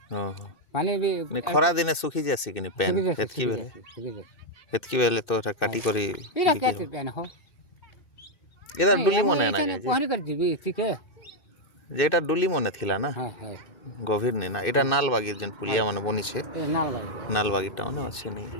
ଓହୋ ପାଣି ବି ଖରା ଦିନେ ଶୁଖି ଯାସି କିନି ପ୍ୟାନ୍ ହେତ୍କି ବେଲେ ତ ଏଟା କାଟି କରି ଏଇଟା କେତେ ପ୍ୟାନ୍ ହୋ ଏଟା ଡୁଲି ମନେ ନା ଯେ ପହଁରି କରି ଯିବି ଟିକେ ଯେ ଏଟା ଡୁଲି ମନେ ଥିଲା ନା ହଁ ହଁ ଗଭୀର ନେ ନା ଏଟା ନାଲବାଗି ଯେନ୍ ପୁଲିଆ ମାନେ ବନିଛେ ଏ ନାଲ ନାଲବାଗି ଟାଉନ ଅଛି ନି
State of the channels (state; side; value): late; right; 2.6 ms